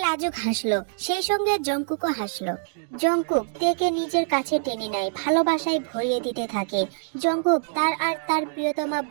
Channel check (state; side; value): silent; left; digital silence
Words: লাজুক হাসলো, সেই সঙ্গে জঙ্কুকও হাসলো। জঙ্কুক তেকে নিজের কাছে টেনে নেয়, ভালোবাসায় ভরিয়ে দিতে থাকে। জঙ্কুক তার আর তার প্রিয়তমা